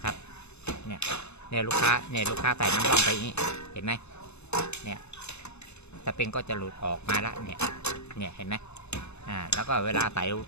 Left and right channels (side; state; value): right; late; 0.81 ms